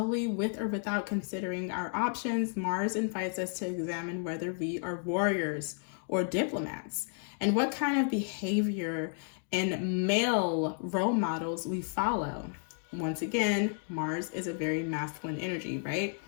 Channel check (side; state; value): right; silent; 56 dB below the other